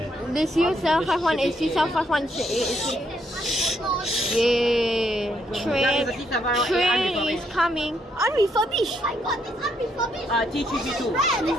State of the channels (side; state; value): both; normal; correlation 0.74